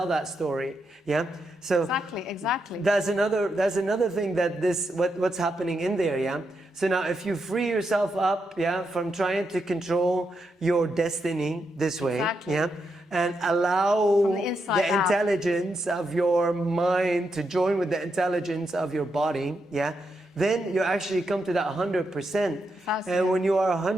that story, yeah? So Exactly. that's another thing that what's happening in there, yeah? So now if you free yourself up, yeah, from trying to control your destiny this way, Exactly. yeah, and allow From the inside the out. intelligence of your mind to join with the intelligence of your body, yeah, then you actually come to that 100%. And when you are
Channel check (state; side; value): normal; both; correlation 0.83